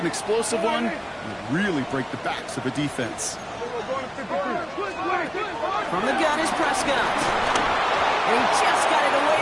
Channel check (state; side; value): identical; both; correlation 1.00